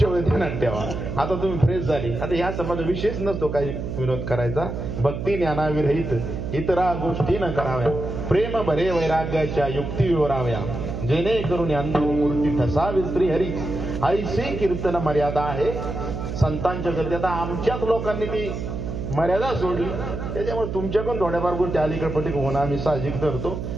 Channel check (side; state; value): right; noise; hum, 5 dB below the sound